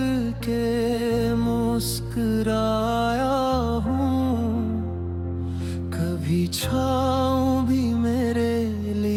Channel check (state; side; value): identical; both; correlation 1.00